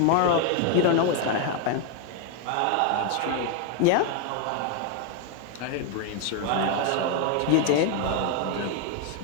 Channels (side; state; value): both; different; correlation 0.01